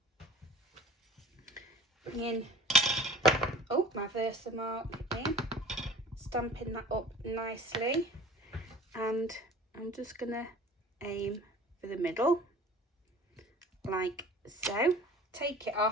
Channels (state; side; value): normal; both; correlation 0.43